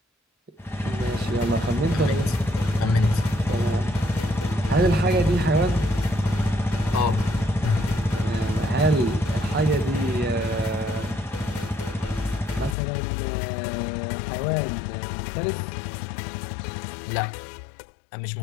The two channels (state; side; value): drops out; right; at 12.8 s